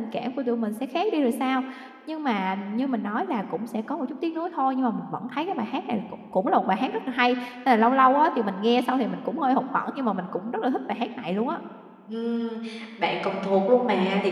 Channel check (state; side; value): identical; both; correlation 1.00